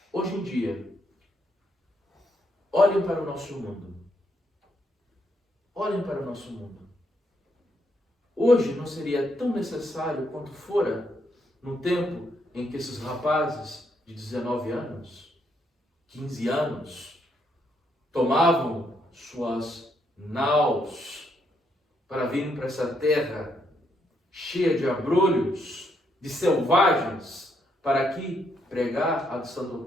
Hoje em dia, olhem para o nosso mundo. Olhem para o nosso mundo. Hoje não seria tão necessário quanto fora no tempo em que esses rapazes de 19 anos, 15 anos, tomavam suas naus para virem para essa terra cheia de abrolhos, de selvagens, para aqui pregar a sã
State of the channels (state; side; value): normal; both; correlation 0.75